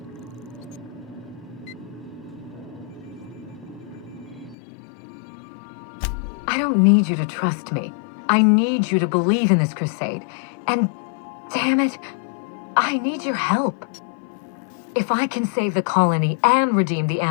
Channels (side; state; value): right; drops out; at 4.5 s